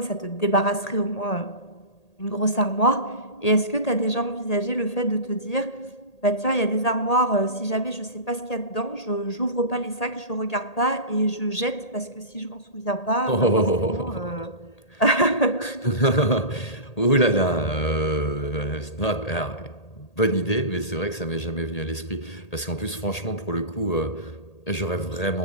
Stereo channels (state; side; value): late; right; 1.8 ms